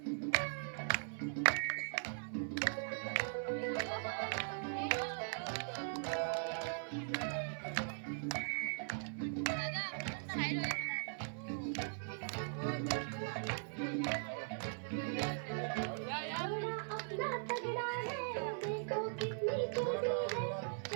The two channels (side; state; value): left; silent; 51 dB below the other